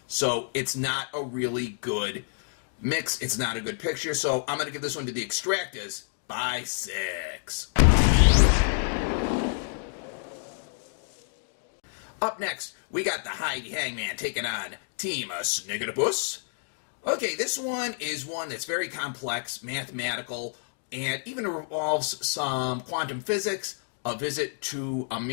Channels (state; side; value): silent; right; digital silence